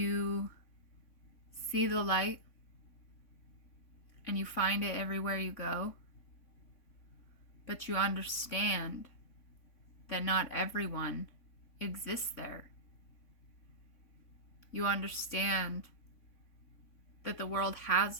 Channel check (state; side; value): late; right; 3.5 ms